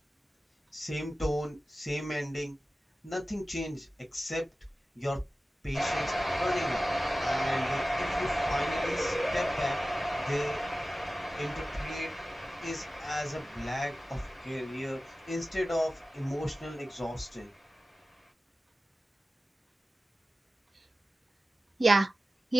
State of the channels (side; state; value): both; normal; correlation 0.95